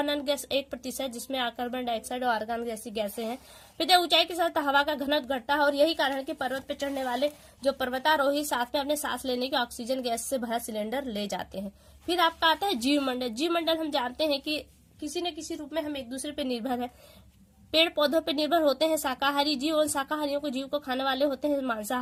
गैस 1% जिसमें कार्बन डाइऑक्साइड और आर्गन जैसी गैसें हैं। फिर ऊंचाई के साथ हवा का घनत्व घटता है और यही कारण है कि पर्वत पर चढ़ने वाले जो पर्वतारोही साथ में अपने सांस लेने के ऑक्सीजन गैस से भरा सिलेंडर ले जाते हैं। फिर आपका आता है जीवमंडल। जीवमंडल हम जानते हैं कि किसी न किसी रूप में हम एक दूसरे पर निर्भर है। पेड़ पौधों पर निर्भर होते हैं शाकाहारी जीव, और शाकाहारियों को जीव को खाने वाले होते हैं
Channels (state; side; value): identical; both; correlation 1.00